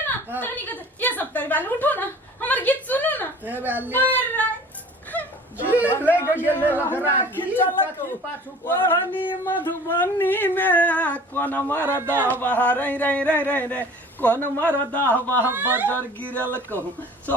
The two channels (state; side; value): normal; both; correlation 0.45